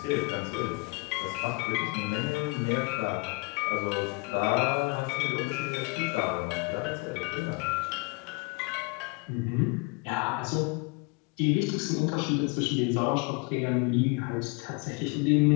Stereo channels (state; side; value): quieter; right; 29.1 dB